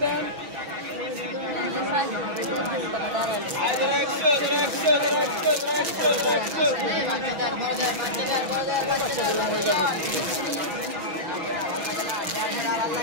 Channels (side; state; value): left; late; 6.2 ms